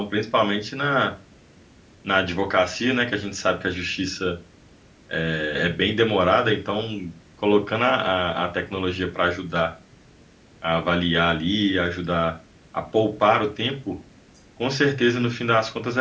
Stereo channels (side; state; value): both; identical; correlation 1.00